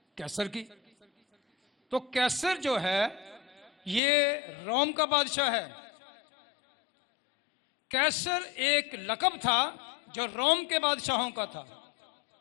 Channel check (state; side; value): drops out; right; at 4.0 s